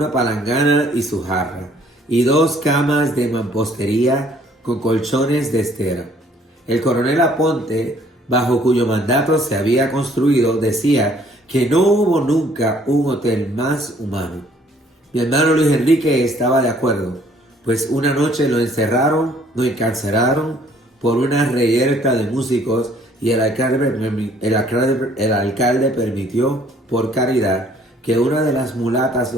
palangana y su jarra, y 2 camas de mampostería con colchones de estera. El coronel Aponte, bajo cuyo mandato se había construido, decía que no hubo nunca un hotel más humano. Mi hermano Luis Enrique estaba de acuerdo, pues una noche lo encarcelaron por una reyerta de músicos y el alcalde permitió, por caridad, que una de las mulatas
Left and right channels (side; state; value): both; normal; correlation 0.60